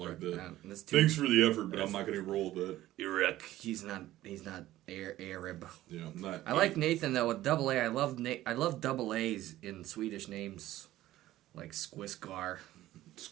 that. Thanks for the effort, but I'm not going to roll with that. Erik, he's not Arab. Yeah, I'm not. I like Nathan though with double A. I love double A's in Swedish names, like Squisgar.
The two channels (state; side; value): quieter; left; 15.0 dB